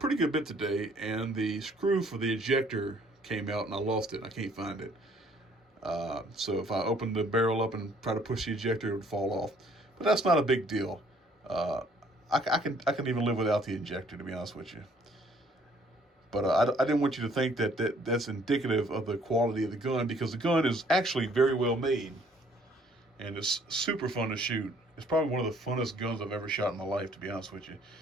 good bit today and the screw for the ejector came out and I lost it. I can't find it. So if I opened the barrel up and try to push the ejector, it would fall off. But that's not a big deal. Uh, I can even live without the ejector, to be honest with you. But I didn't want you to think that's indicative of the quality of the gun, because the gun is actually very well made and it's super fun to shoot. It's probably one of the funnest guns I've ever shot in my life, to be honest with you.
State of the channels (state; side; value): normal; both; correlation 0.61